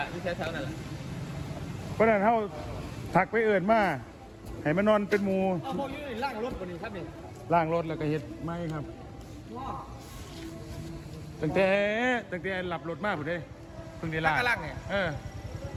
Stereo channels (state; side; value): identical; both; correlation 1.00